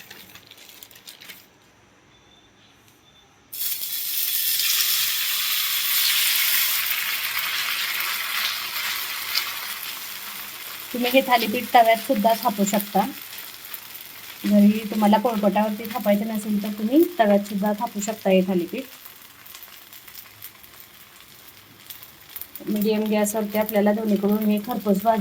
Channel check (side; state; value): both; identical; correlation 1.00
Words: तुम्ही हे थालीपीठ तव्यात सुद्धा थापू शकता. जरी तुम्हाला पोळपाटावरती थापायचं नसेल तर तुम्ही तव्यात सुद्धा थापू शकता हे थालीपीठ. मीडियम गॅसवरती आपल्याला दोन्हीकडून हे खरपूस